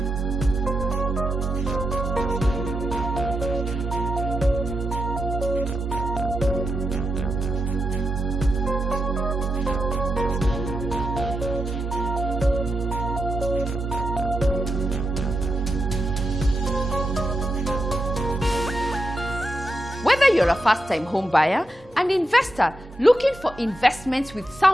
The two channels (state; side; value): normal; both; correlation 0.87